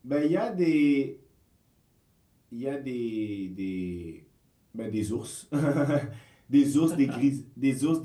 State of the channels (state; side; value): identical; both; correlation 1.00